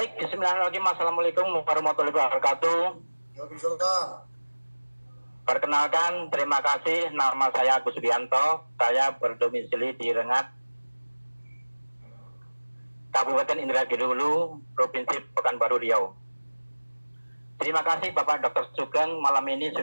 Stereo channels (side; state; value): both; inverted; correlation -1.00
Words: bismillahirrahmanirrahim. Assalamualaikum warahmatullahi wabarakatuh. Waalaikumsalam. Perkenalkan, terima kasih. Nama saya Agus Bianto. Saya berdomisili di Rengat, Kabupaten Indragiri Hulu, Provinsi Pekanbaru Riau. Terima kasih Bapak Dr. Sugeng malam ini